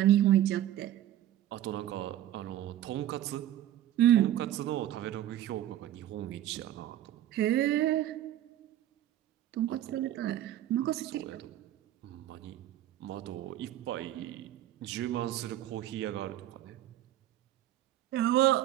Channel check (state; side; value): quieter; left; 12.7 dB